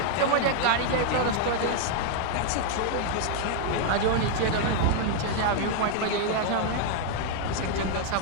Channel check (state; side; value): different; both; correlation 0.00